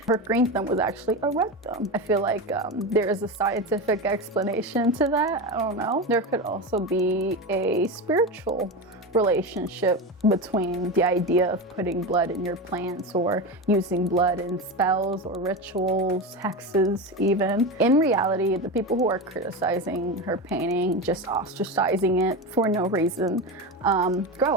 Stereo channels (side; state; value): both; normal; correlation 0.20